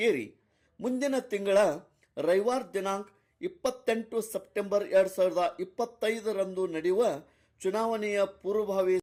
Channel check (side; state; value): both; identical; correlation 1.00